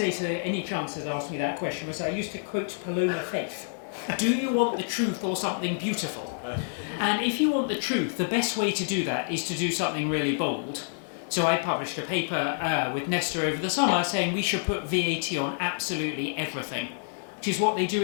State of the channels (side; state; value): right; silent; 59 dB below the other